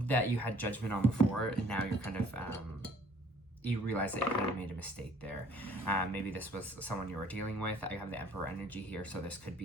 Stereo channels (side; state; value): both; normal; correlation 0.57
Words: you had judgment on before, and now you're kind of you realize that you kind of made a mistake there. Maybe this was someone you were dealing with. I have the Emperor energy here, so this could